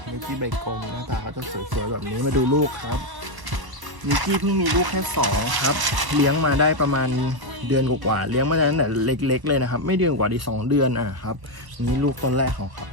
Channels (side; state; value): left; late; 1.0 ms